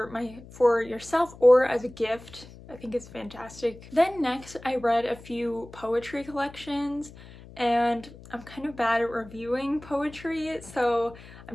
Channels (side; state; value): left; noise; hum, 19 dB below the sound